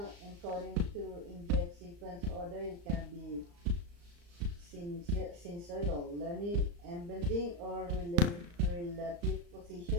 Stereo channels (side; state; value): left; late; 35 ms